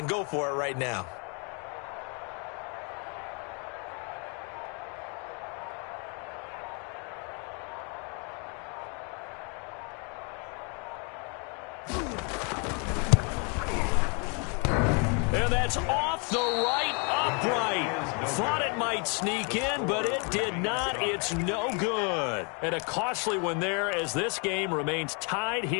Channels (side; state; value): right; quieter; 35.5 dB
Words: go for it right now. And that's off the right upright. Thought it might sneak in, but it did not. It's no good. And a costly one there as this game remains tied